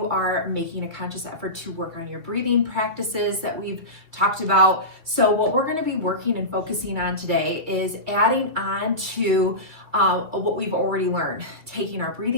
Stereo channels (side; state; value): left; late; 2.3 ms